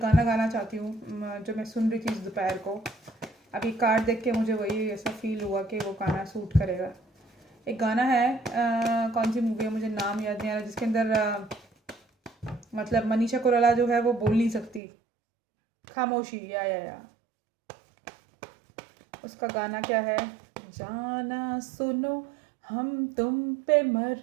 गाना गाना चाहती हूँ जो मैं सुन रही थी इस दोपहर को। अभी कार्ड देख के मुझे वही ऐसा फील हुआ कि वो गाना सूट करेगा। एक गाना है, कौन सी मूवी है मुझे नाम याद नहीं आ रहा, जिसके अंदर मतलब मनीषा कोइराला जो है वो बोल नहीं सकती, खामोशी, या उसका गाना क्या है, जाना सुनो हम तुम पे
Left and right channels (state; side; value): drops out; left; at 14.8 s